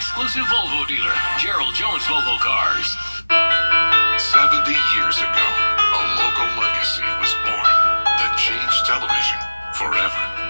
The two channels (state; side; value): inverted; both; correlation -1.00